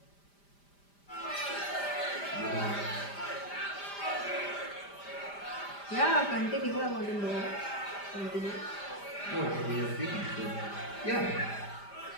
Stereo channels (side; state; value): right; late; 5.0 ms